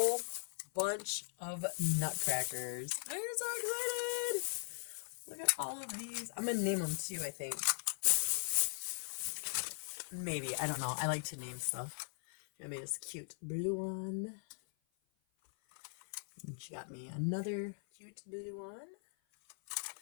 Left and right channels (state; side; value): silent; right; 51 dB below the other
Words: bunch of nutcrackers. I'm so excited! Look at all of these. I'm going to name them too, I think. Maybe, I don't know. I like to name stuff. I made this cute blue one. And she got me another cute blue one.